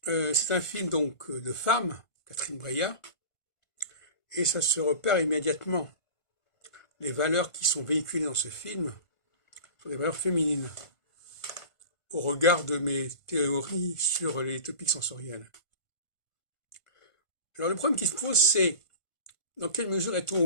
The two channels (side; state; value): right; late; 1.5 ms